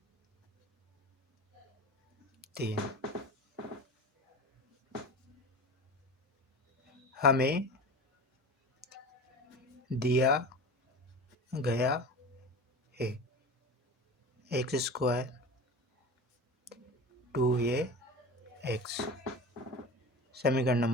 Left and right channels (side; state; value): both; normal; correlation 0.32